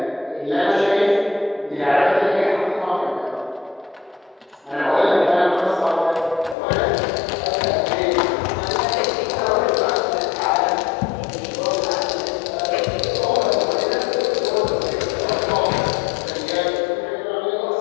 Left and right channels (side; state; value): right; drops out; at 6.6 s